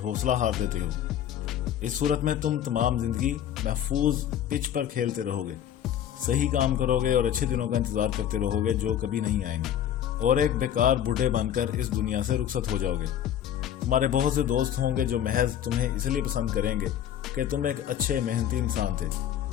حوصلہ ہار دیتے ہو؟ اس صورت میں تم تمام زندگی محفوظ پچ پر کھیلتے رہو گے، صحیح کام کرو گے اور اچھے دنوں کا انتظار کرتے رہو گے جو کبھی نہیں آئیں گے، اور ایک بیکار بوڑھے بن کر اس دنیا سے رخصت ہو جاؤ گے۔ تمہارے بہت سے دوست ہوں گے جو محض تمہیں اس لیے پسند کریں گے کہ تم ایک اچھے محنتی انسان تھے،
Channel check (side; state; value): right; quieter; 10.4 dB